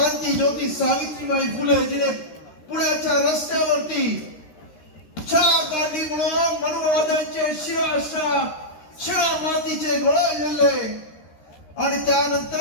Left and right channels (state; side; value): late; right; 13 ms